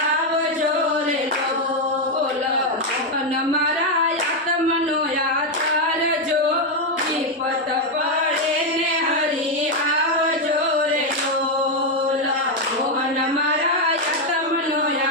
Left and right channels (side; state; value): both; normal; correlation 0.04